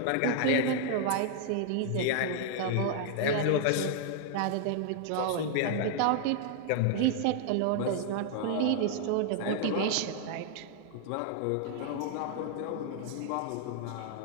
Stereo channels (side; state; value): both; different; correlation 0.00